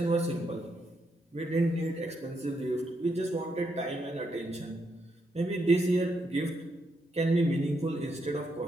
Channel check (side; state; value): both; normal; correlation 0.79